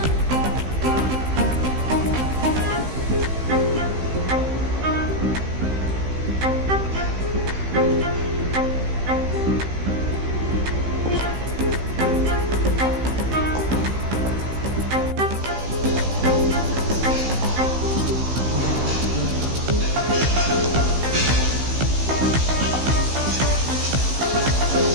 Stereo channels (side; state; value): left; late; 16 ms